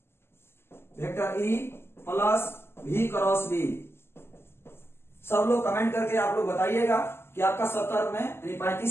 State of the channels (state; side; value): late; right; 0.12 ms